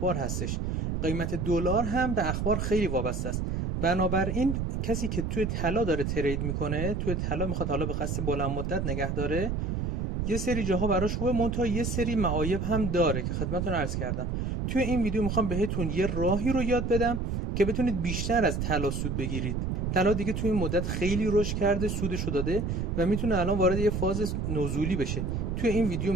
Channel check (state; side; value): noise; right; rumble, 1 dB below the sound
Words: هستش. قیمت دلار هم به اخبار خیلی وابسته است. بنابراین کسی که توی طلا داره ترید میکنه، توی طلا میخواد حالا به قصد بلند مدت نگه داره، یه سری جاها براش خوبه، منتها یه سری معایب هم داره که خدمتتون عرض کردم. توی این ویدیو میخوام بهتون یه راهی رو یاد بدم که بتونید بیشتر از طلا سود بگیرید. طلا دیگه توی این مدت خیلی رشد کرده، سودشو داده و میتونه الان وارد یه فاز نزولی بشه. توی این ویدیو